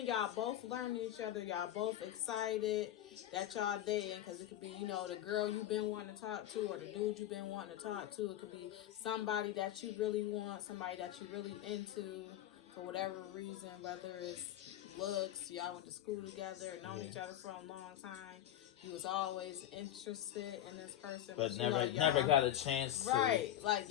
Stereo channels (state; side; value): quieter; right; 12.3 dB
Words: y'all both learn each other. Y'all both excited that y'all dating, cause it could be the girl you've been wanting to talk to, or the dude you've been wanting to talk to. It could be somebody that you really want, somebody that you really into, for whatever reason, whether it's looks, y'all went to school together, known Yeah. each other for a long time. You was always interested in this person, But you know never y'all got a chance to right, like